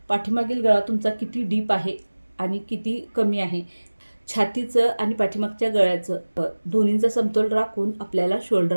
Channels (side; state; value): both; inverted; correlation -1.00